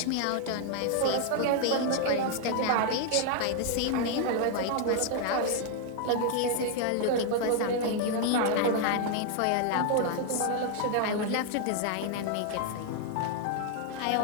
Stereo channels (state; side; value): different; both; correlation 0.00